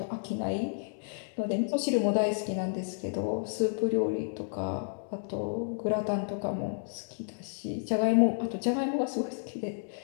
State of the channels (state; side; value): silent; right; digital silence